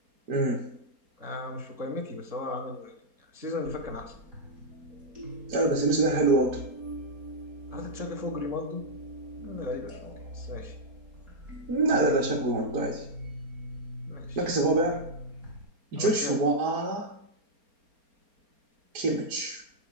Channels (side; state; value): left; late; 4.3 ms